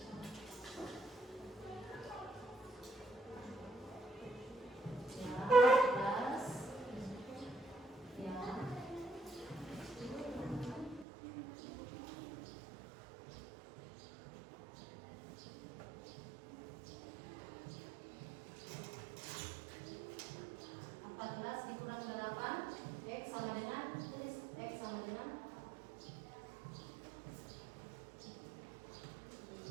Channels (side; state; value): left; drops out; at 11.1 s